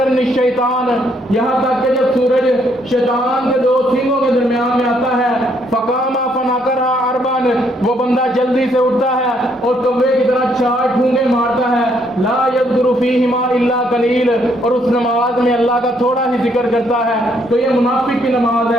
الشیطان یہاں تک کہ جب سورج شیطان کے دو سینگوں کے درمیان میں آتا ہے، فقام فناکرھا اربعا وہ بندہ جلدی سے اٹھتا ہے اور کوے کی طرح 4 ٹھونگے مارتا ہے، لا یذکر فیہما الا قلیل اور اس نماز میں اللہ کا تھوڑا ہی ذکر کرتا ہے، تو یہ منافق کی نماز ہے۔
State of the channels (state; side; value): normal; both; correlation 0.70